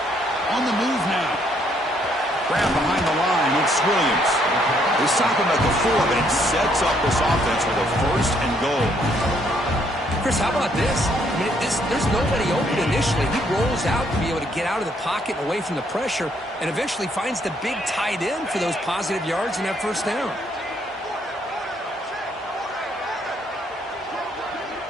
On the move now. Grab behind the line. It's Williams. They stop him at the 4, but it sets up this offense with a 1st and goal. Chris, how about this? I mean, there's nobody open initially. He rolls out to be able to get out of the pocket and away from the pressure and eventually finds the big tight end for those positive yards in that first down.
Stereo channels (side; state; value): both; normal; correlation 0.69